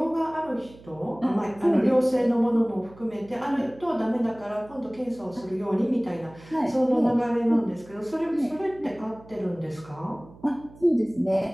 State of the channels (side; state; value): right; noise; hum, 22 dB below the sound